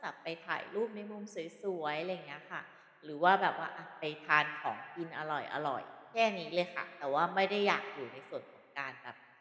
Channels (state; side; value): identical; both; correlation 1.00